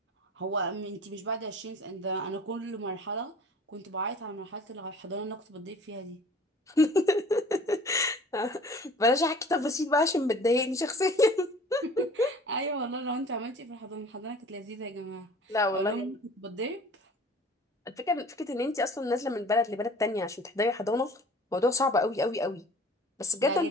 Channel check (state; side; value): normal; both; correlation 0.47